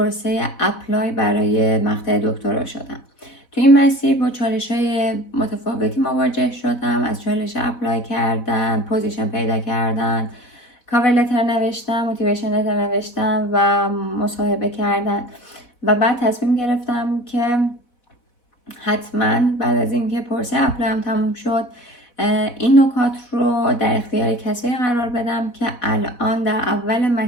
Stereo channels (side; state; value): right; late; 4.1 ms